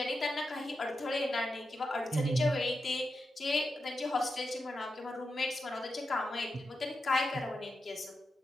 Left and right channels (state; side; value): normal; both; correlation 0.88